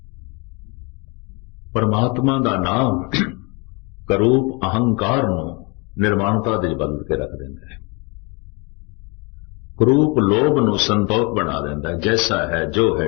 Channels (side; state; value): right; quieter; 30.0 dB